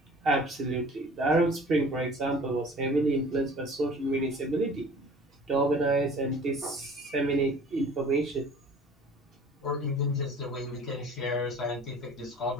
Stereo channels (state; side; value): normal; both; correlation 0.47